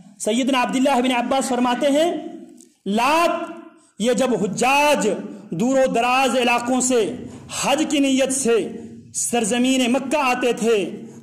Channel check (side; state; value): both; identical; correlation 1.00